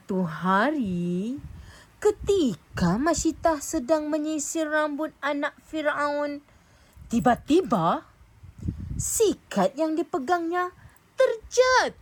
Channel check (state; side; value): identical; both; correlation 1.00